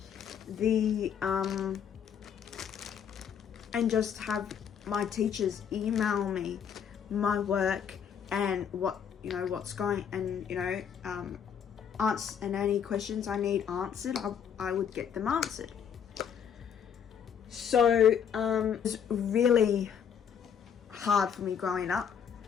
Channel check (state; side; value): quieter; right; 7.9 dB